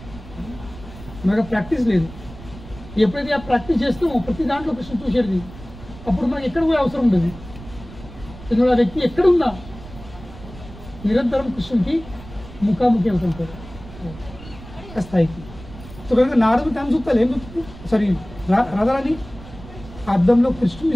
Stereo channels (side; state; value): right; noise; rumble, 16 dB below the sound